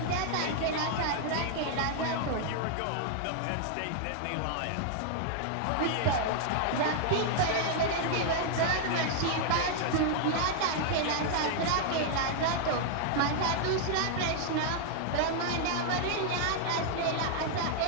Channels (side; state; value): both; different; correlation -0.01